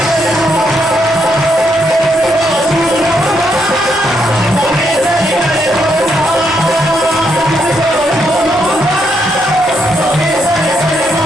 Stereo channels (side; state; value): both; normal; correlation 0.77